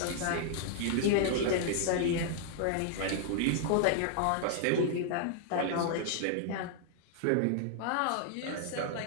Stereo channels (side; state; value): both; different; correlation 0.00